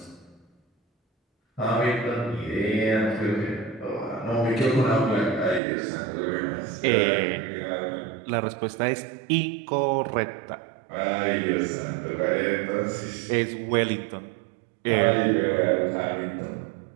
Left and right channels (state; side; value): drops out; left; at 5.6 s